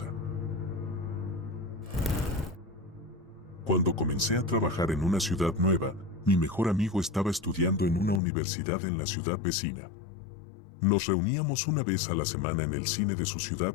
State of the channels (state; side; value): drops out; right; at 8.2 s